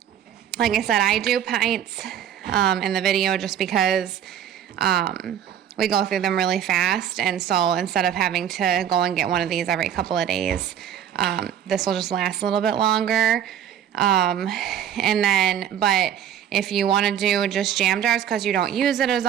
I said, I do pints in the video just because we go through them really fast, and so instead of having to go and get one of these every couple of days, this will just last a little bit longer. And then, but if you want to do just jam jars because you don't use it as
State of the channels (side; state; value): left; quieter; 9.8 dB